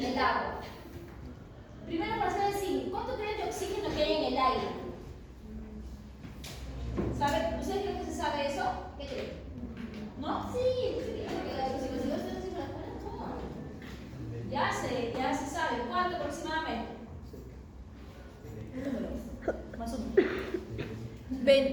el agua? Primero, para saber si, ¿cuánto creen de oxígeno que hay en el aire? ¿Saben? ¿Ustedes creen que se sabe eso? ¿Qué creen? ¿No? Sí, ya se sabe. ¿Cuánto aproximadamente? Más o menos.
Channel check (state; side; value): identical; both; correlation 1.00